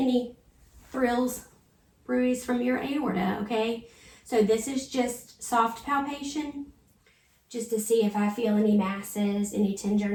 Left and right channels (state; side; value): identical; both; correlation 1.00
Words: thrills, bruise from your aorta, okay? So this is just soft palpation, just to see if I feel any masses, any